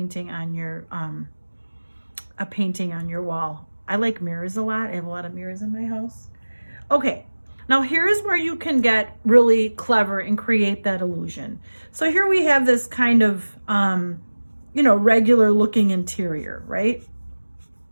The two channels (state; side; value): inverted; both; correlation -1.00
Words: on your wall. I like mirrors a lot. I have a lot of mirrors in my house. Okay, now here's where you can get really clever and create that illusion. So here we have this kind of, you know, regular looking interior, right?